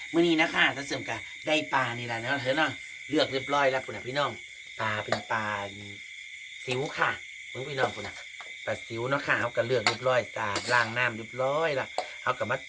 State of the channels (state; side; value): identical; both; correlation 1.00